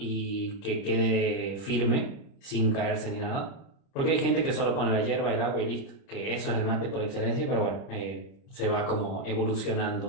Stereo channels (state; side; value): late; right; 30 ms